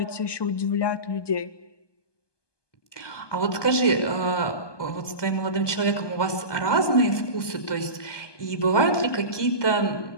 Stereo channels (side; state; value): right; late; 1.2 ms